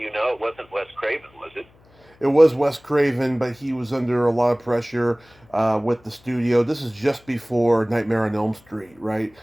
you know? It wasn't Wes Craven, was it? It was Wes Craven, but he was under a lot of pressure with the studio. This is just before Nightmare on Elm Street, right?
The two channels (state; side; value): noise; left; hum, 29 dB below the sound